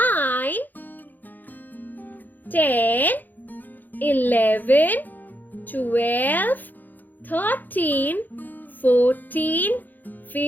10, 11, 12, 13, 14,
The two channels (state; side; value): late; right; 0.085 ms